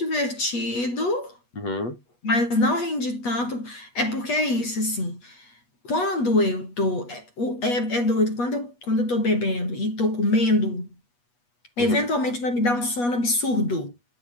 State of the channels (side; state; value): right; late; 8.3 ms